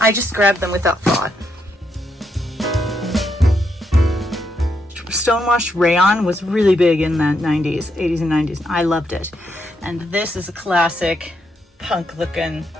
just grabbed them without thought. Stonewashed rayon was really big in the 90s, 80s and 90s. I loved it. And this is a classic punk looking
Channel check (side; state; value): both; normal; correlation 0.79